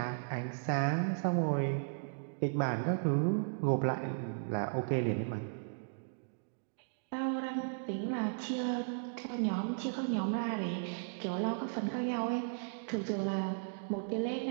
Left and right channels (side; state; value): left; silent; digital silence